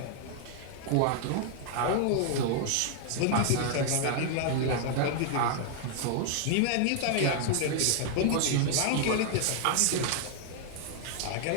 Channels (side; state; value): both; different; correlation 0.00